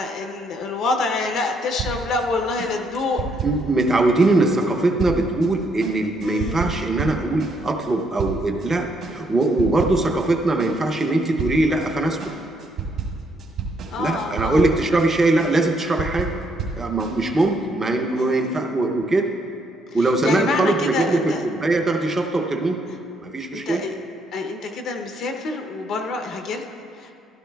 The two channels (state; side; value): normal; both; correlation 0.72